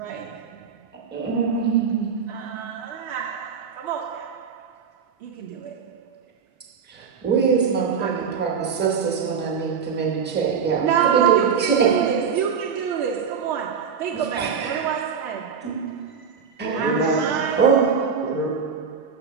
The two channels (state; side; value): quieter; left; 6.4 dB